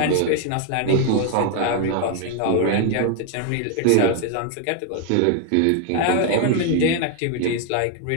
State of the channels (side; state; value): both; different; correlation 0.00